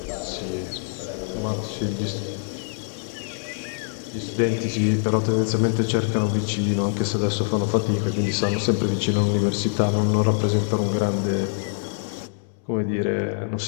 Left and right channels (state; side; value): silent; right; 62 dB below the other